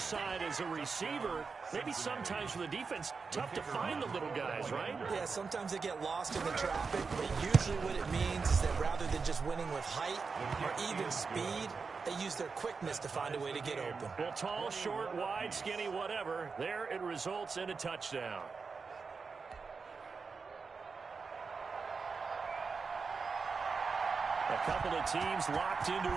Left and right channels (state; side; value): quieter; left; 4.9 dB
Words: as a receiver. Maybe sometimes for the defense, tough to find the little guys, right? Yeah, sometimes they get lost in the traffic, but usually what it means is that rather than just winning with height or even speed, they use their quickness to find a way to get open. Well, tall, short, wide, skinny, whatever, there it results in a touchdown. A couple of teams locked into